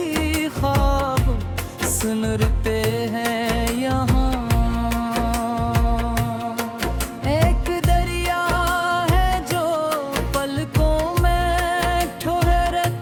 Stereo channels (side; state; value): both; identical; correlation 1.00